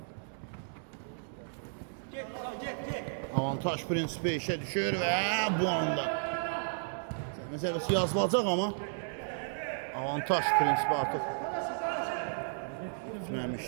Avantaj prinsipi işe düşür ve bu anda meselesi yazılacak ama avantaj prinsipi artık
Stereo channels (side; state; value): left; silent; 55 dB below the other